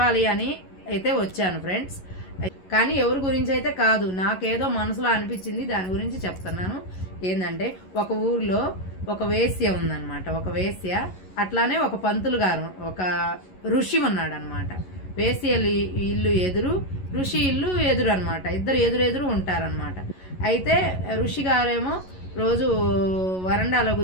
అని అయితే వచ్చాను ఫ్రెండ్స్. కానీ ఎవరి గురించి అయితే కాదు, నాకేదో మనసులో అనిపించింది, దాని గురించి చెప్తున్నాను. ఏంటంటే, ఒక ఊర్లో ఒక వేశ్య ఉందన్నమాట. ఒక వేశ్య, అట్లానే ఒక పంతులు గారు, ఒక ఋషి ఉన్నాడు అనమాట. వేశ్య ఇల్లు ఎదురు, ఋషి ఇల్లు ఎదురు అనమాట. ఇద్దరు ఎదురెదురు ఉంటారనమాట. అయితే ఋషి గారేమో రోజు వరండాలో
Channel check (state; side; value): late; right; 11 ms